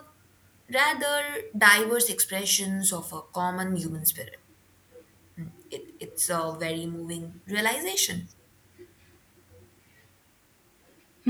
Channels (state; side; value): identical; both; correlation 1.00